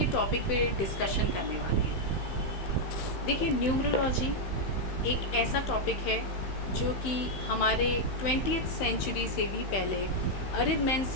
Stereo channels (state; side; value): late; right; 15 ms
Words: टॉपिक पे डिस्कशन करने वाले हैं। देखिए, न्यूमरोलॉजी एक ऐसा टॉपिक है जो कि हमारे 20th सेंचुरी से भी पहले